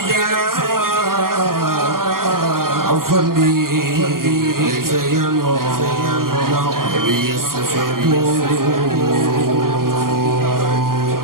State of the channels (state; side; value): late; left; 0.92 ms